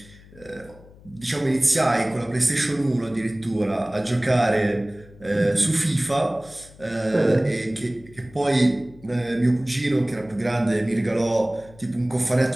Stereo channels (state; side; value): noise; left; hum, 23 dB below the sound